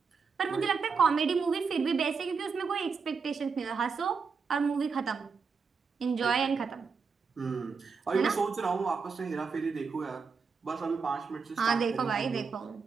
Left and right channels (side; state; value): left; quieter; 5.3 dB